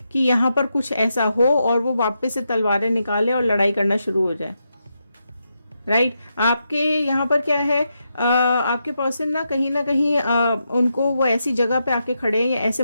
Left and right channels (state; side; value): inverted; both; correlation -0.84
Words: कि यहाँ पर कुछ ऐसा हो और वो वापस से तलवारें निकाले और लड़ाई करना शुरू हो जाए। राइट, आपके यहाँ पर क्या है, आपके पर्सन ना कहीं उनको वो ऐसी जगह पे आके खड़े हैं या ऐसे